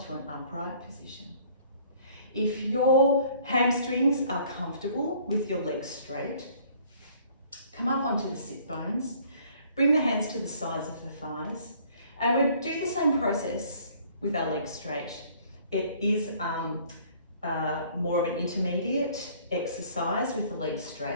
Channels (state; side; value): inverted; both; correlation -0.57